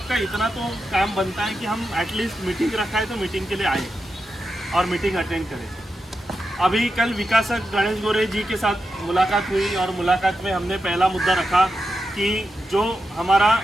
इतना तो काम बनता है कि हम एटलीस्ट मीटिंग रखा है तो मीटिंग के लिए आए और मीटिंग अटेंड करें। अभी कल विकासक गणेश गोरे जी के साथ मुलाकात हुई, और मुलाकात में हमने पहला मुद्दा रखा कि जो हमारा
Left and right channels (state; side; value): normal; both; correlation 0.89